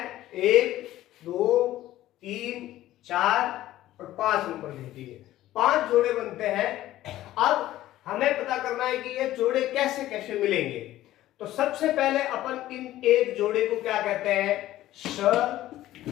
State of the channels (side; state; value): right; quieter; 14.6 dB